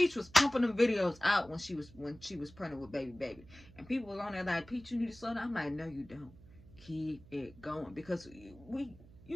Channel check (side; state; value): right; noise; hum, 21 dB below the sound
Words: was pumping them videos out when she was pregnant with baby, and people was on there like, Peach, you need to slow down. I'm like, no, you don't. Keep it going, because you